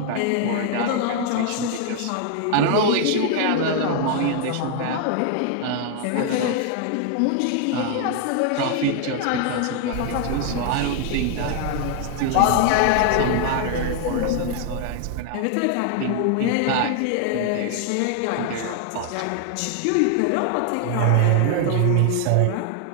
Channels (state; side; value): different; both; correlation 0.00